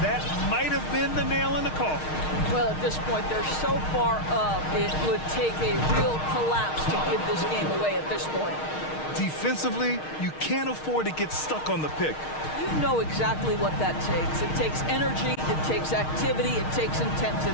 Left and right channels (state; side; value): late; right; 6.4 ms